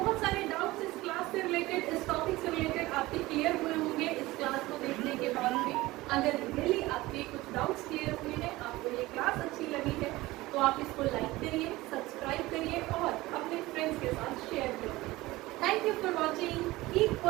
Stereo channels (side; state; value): left; quieter; 19.1 dB